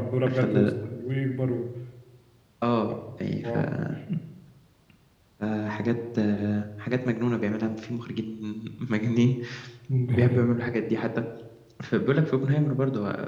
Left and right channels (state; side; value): identical; both; correlation 1.00